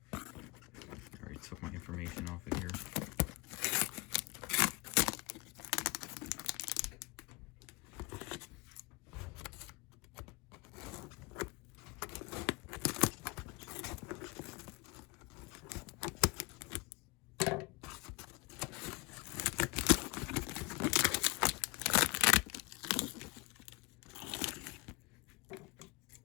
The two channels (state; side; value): quieter; right; 26.0 dB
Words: I already took my information off of here.